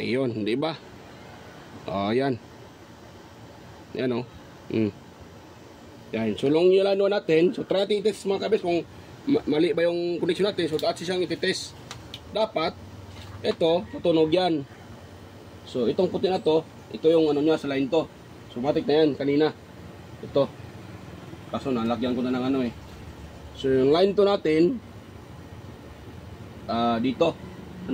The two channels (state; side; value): identical; both; correlation 1.00